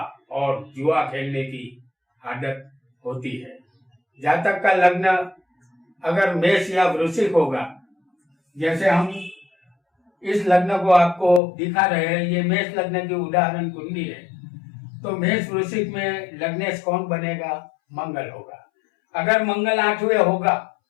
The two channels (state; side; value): drops out; right; at 11.4 s